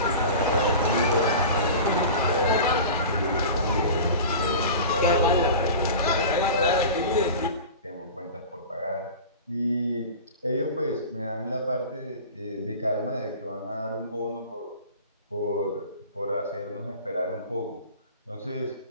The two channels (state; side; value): inverted; both; correlation -0.35